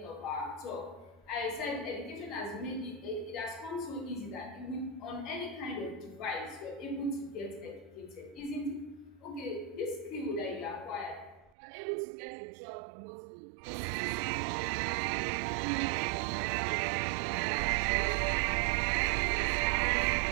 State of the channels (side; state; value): left; drops out; at 11.5 s